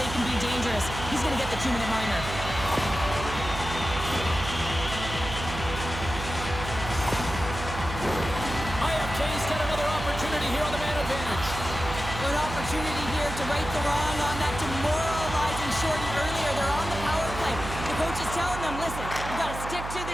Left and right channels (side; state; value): right; noise; hum, 8 dB below the sound